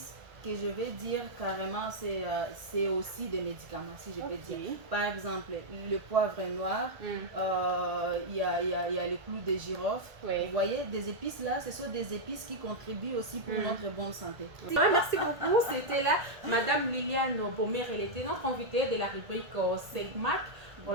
que je vais dire carrément, c'est aussi des médicaments, si je peux dire. Par exemple, le poivre noir, il y a le clou de girofle. Oui. Vous voyez, des épices là, ce sont des épices qui contribuent aussi pour notre bonne santé. Merci beaucoup. C'était là Madame Liliane Bomer, elle était notre invitée de la rubrique Segmac.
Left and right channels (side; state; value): left; late; 1.8 ms